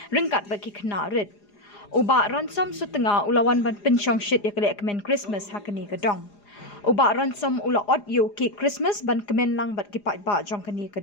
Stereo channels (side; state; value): right; late; 4.9 ms